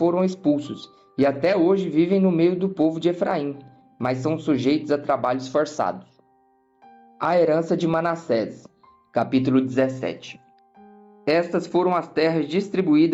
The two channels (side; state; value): both; identical; correlation 1.00